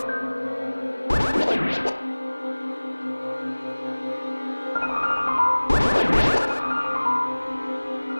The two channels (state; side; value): inverted; both; correlation -1.00